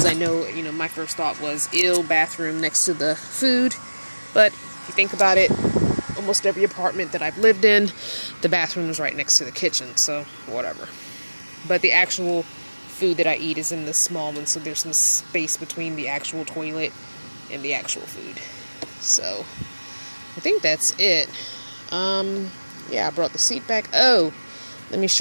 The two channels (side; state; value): both; inverted; correlation -1.00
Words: I know, my first thought was, bathroom next to the food. But if you think about it, almost every apartment that I've lived in, the bathroom is right next to the kitchen, so whatever. But the actual food that I eat is in the small one, so there's some space between the actual toilet and the actual food. So I think that's it. Yeah, I brought the seat back. Oh, let me